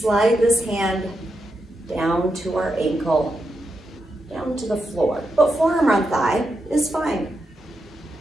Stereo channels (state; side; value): normal; both; correlation 0.86